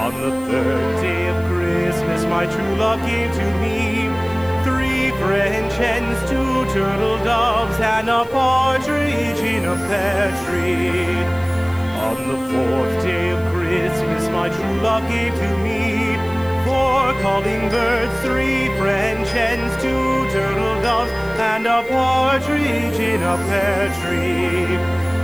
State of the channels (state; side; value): noise; left; hiss, 25 dB below the sound